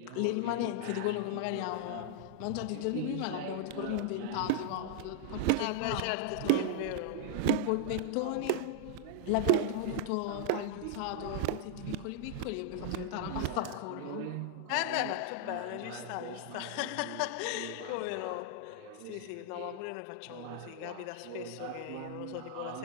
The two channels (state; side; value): different; both; correlation -0.01